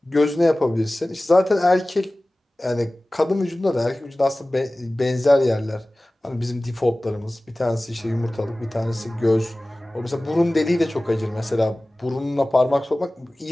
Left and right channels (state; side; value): normal; both; correlation 0.98